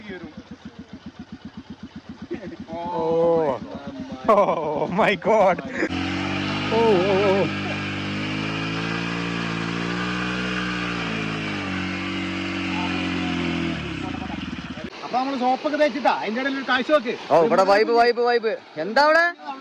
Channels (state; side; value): identical; both; correlation 1.00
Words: Oh my God. ഓ ഓ ഓ അപ്പൊ നമ്മള് സോപ്പൊക്കെ തേച്ചിട്ടാ അതിന്റെ ഇടയിൽ ഒരു കാഴ്ച നോക്ക്. ഓ ഇവിടെ വൈബ് വൈബ് വൈബ്. എന്താ അവിടെ